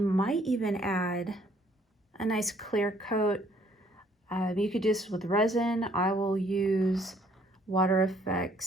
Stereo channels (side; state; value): both; normal; correlation 0.63